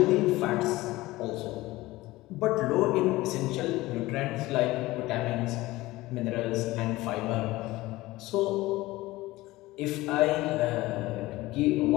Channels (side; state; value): right; quieter; 18.8 dB